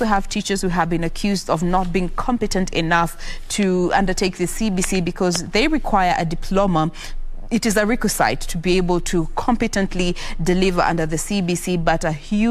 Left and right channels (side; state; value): both; identical; correlation 1.00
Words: have teachers who have been accused of not being competent enough to undertake the CBC because they require a diploma. It is a requisite to be able to competently deliver under the CBC, but a